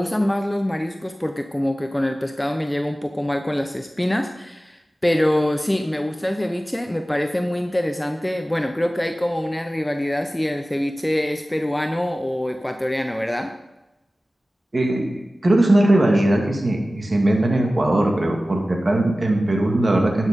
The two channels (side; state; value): both; normal; correlation 0.96